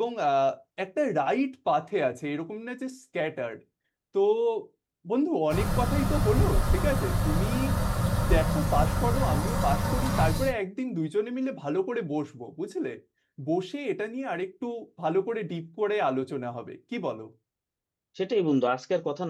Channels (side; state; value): both; identical; correlation 1.00